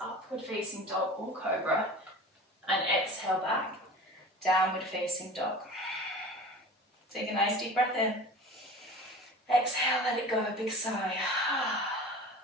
facing dog or cobra, and exhale back, downward facing dog. Take a nice deep breath in. Exhale, let it go, big sigh.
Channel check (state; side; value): normal; both; correlation 0.38